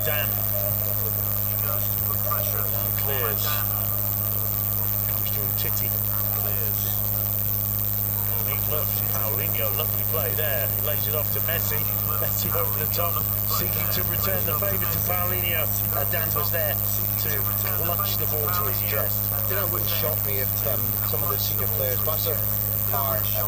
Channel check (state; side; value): identical; both; correlation 1.00